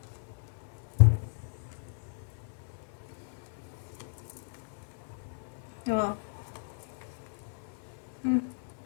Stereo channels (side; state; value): right; silent; digital silence